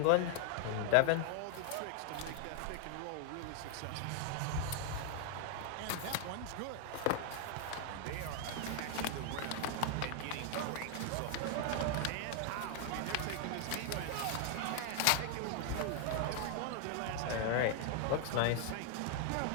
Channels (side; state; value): both; different; correlation 0.00